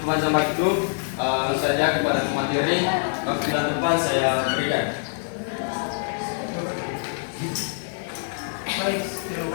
waktu, langsung saja kepada materi. Waktu dan depan saya berikan. Baik, terima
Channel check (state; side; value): silent; right; digital silence